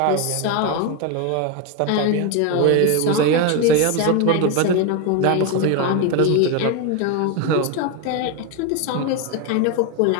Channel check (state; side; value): different; both; correlation 0.02